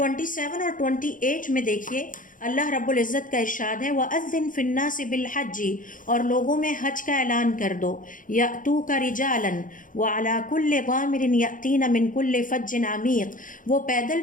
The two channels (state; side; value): late; right; 0.39 ms